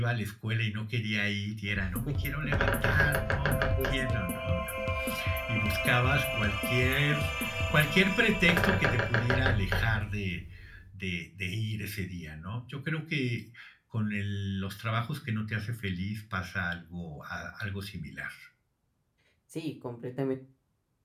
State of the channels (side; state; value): both; identical; correlation 1.00